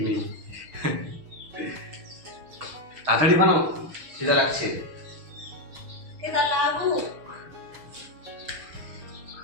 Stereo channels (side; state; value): left; late; 6.4 ms